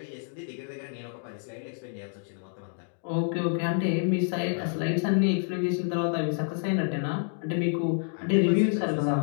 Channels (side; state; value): right; silent; 59 dB below the other